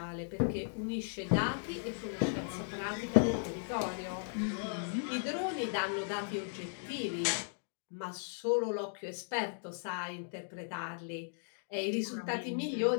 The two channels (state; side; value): silent; right; digital silence